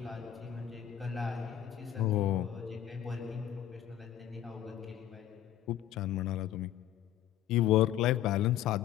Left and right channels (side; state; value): right; quieter; 11.3 dB